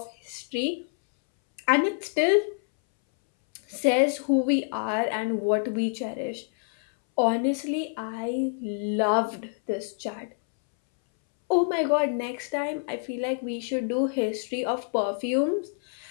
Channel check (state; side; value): silent; right; 60 dB below the other